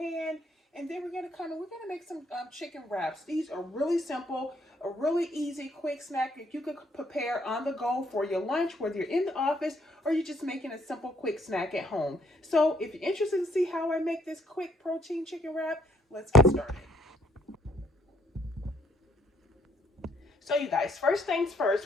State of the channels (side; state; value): both; normal; correlation 0.67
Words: and then we're gonna make some chicken wraps. These are really simple, a really easy quick snack that you could prepare on the go for your lunch, whether you're in the office or you're just making a simple quick snack at home. So if you're interested to see how I make this quick protein chicken wrap, let's get started. So you guys, first things